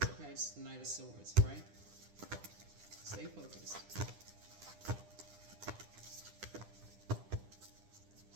Okay, it's the Knight of Swords, right? Stay focused.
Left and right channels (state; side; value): late; left; 9.9 ms